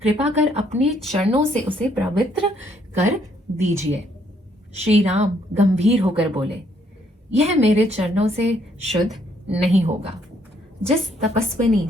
कृपा कर अपने चरणों से उसे पवित्र कर दीजिए। श्री राम गंभीर होकर बोले, यह मेरे चरणों से शुद्ध नहीं होगा। जिस तपस्विनी,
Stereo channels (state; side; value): normal; both; correlation 0.69